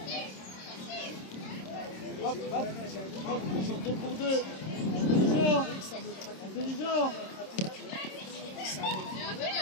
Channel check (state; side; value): late; right; 26 ms